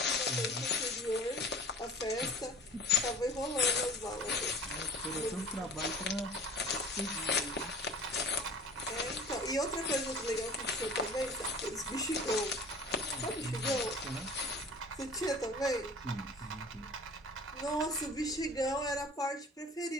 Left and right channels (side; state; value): both; normal; correlation 0.42